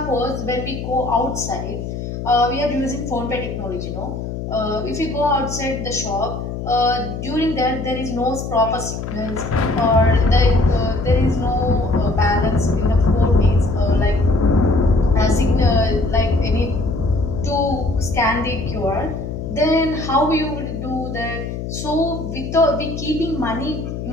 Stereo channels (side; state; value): left; noise; hum, 6 dB below the sound